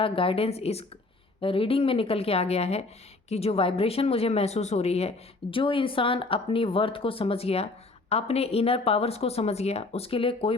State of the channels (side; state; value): right; quieter; 3.3 dB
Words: गाइडेंस इस रीडिंग में निकल के आ गया है कि जो वाइब्रेशन मुझे महसूस हो रही है, जो इंसान अपनी वर्थ को समझ गया, अपने इनर पावर्स को समझ गया, उसके लिए कोई